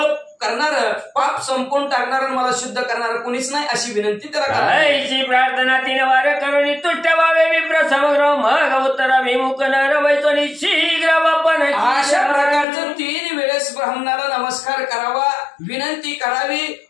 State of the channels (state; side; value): drops out; right; at 12.7 s